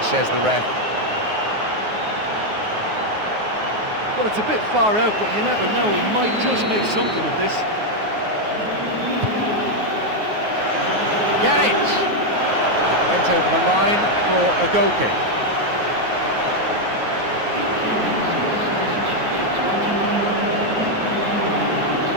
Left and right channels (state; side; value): late; left; 9.5 ms